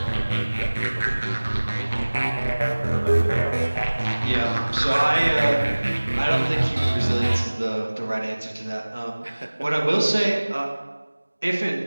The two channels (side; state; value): both; inverted; correlation -1.00